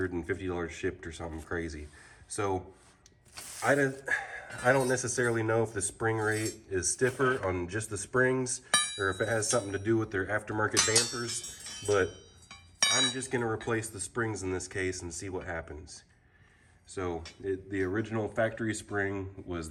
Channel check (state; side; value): identical; both; correlation 1.00